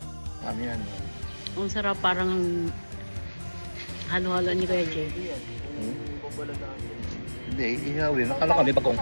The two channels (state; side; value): inverted; both; correlation -1.00